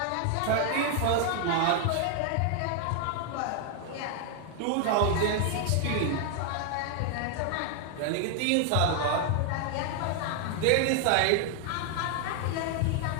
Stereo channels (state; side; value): different; both; correlation 0.00